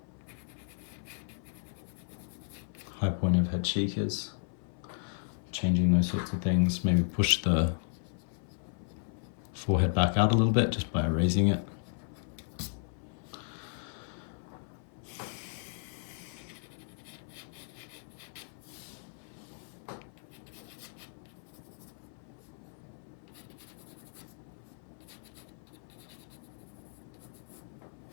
high point of head cheek is, changing those sorts of things, maybe push the forehead back out a little bit just by erasing it.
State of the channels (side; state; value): right; silent; 55 dB below the other